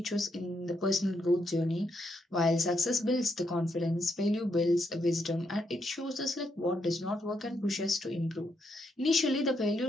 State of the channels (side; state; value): both; normal; correlation 0.78